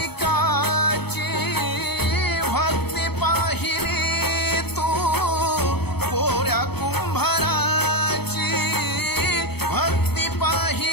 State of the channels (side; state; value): right; late; 0.97 ms